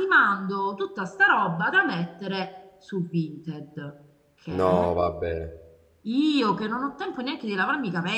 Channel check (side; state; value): both; identical; correlation 1.00